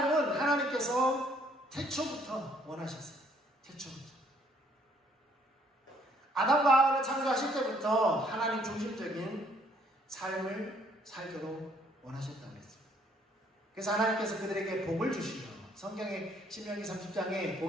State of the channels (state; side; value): normal; both; correlation 0.65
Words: 하나님께서 태초부터 원하셨어요. 태초부터. 아담과 하와를 창조하실 때부터 하나님 중심적인 삶을 살도록 원하셨다고 했어요. 그래서 하나님께서 그들에게 복을 주시며, 성경의 신명기 30장에